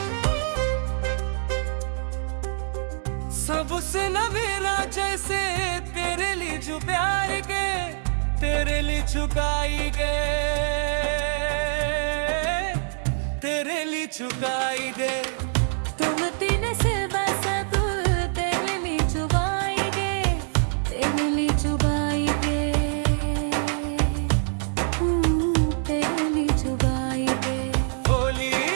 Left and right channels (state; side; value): silent; left; 62 dB below the other